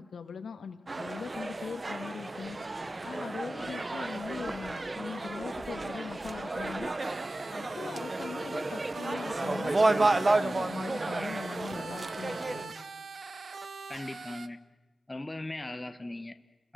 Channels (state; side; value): normal; both; correlation 0.95